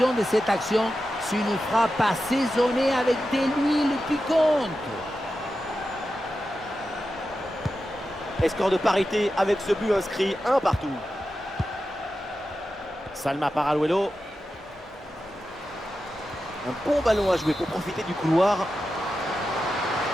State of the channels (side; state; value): both; normal; correlation 0.91